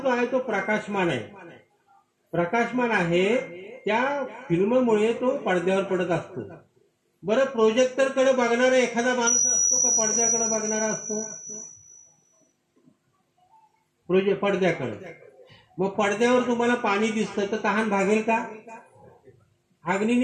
आहे तो प्रकाशमान आहे. प्रकाशमान आहे, त्या फिल्ममुळे तो पडद्यावर पडत असतो. बरं, प्रोजेक्टर कडे बघणारा एखादा माणूस असतो का पडद्याकडे बघणारा असतो? पडद्याकडे. मग पडद्यावर तुम्हाला पाणी दिसतं तर तहान भागेल का?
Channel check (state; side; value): identical; both; correlation 1.00